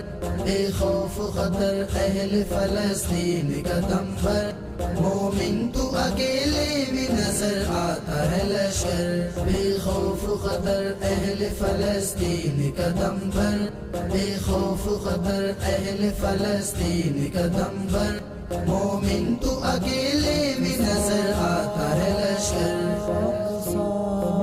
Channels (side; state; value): both; identical; correlation 1.00